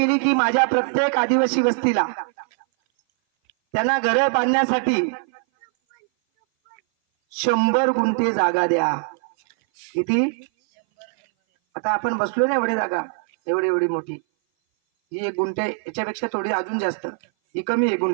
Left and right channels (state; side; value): silent; left; 58 dB below the other